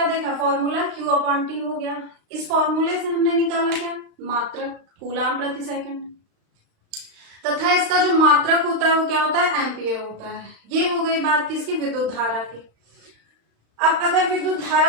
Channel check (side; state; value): left; late; 35 ms